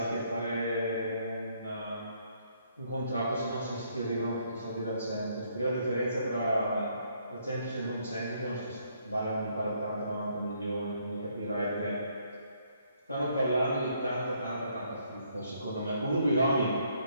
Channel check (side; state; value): both; inverted; correlation -0.70